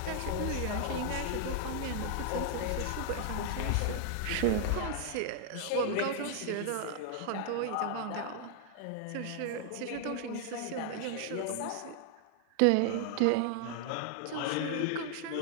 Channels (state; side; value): different; both; correlation 0.00